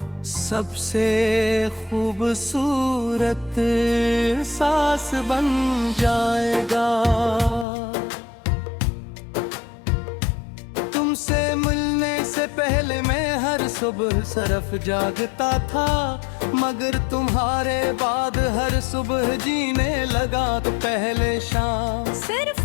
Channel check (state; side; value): drops out; right; at 7.7 s